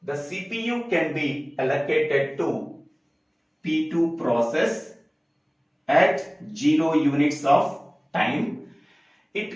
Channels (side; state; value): both; identical; correlation 1.00